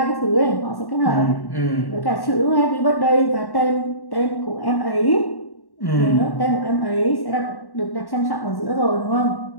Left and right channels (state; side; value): late; right; 1.1 ms